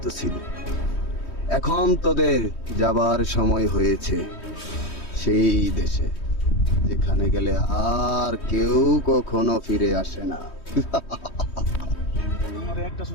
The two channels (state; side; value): late; right; 3.2 ms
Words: ছিলি। এখন তোদের যাবার সময় হয়েছে সেই দেশে, যেখানে গেলে আর কেউ কখনো ফিরে আসে না। একটা